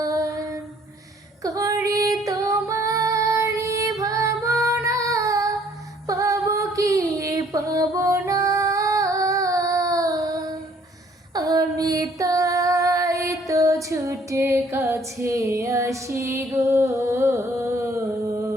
করি তোমারি ভাবনা, পাবো কি পাবো না, আমি তাই তো ছুটে কাছে আসি গো,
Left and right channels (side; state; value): both; normal; correlation 0.61